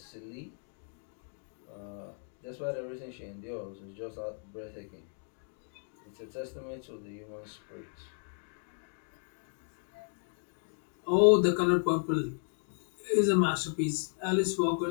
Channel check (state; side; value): silent; right; 55 dB below the other